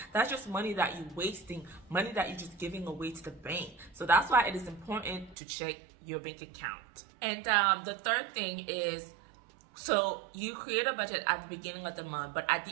That's just money that you're wasting, money that you're just giving away to the bank. So that's why it is important to check your bank account. And the third thing is, so you create a budget at the beginning of the month, but at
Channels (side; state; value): left; drops out; at 5.4 s